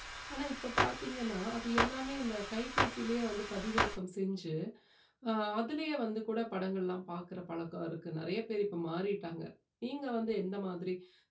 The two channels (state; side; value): identical; both; correlation 1.00